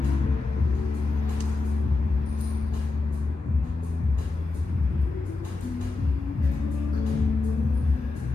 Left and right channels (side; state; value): right; quieter; 3.6 dB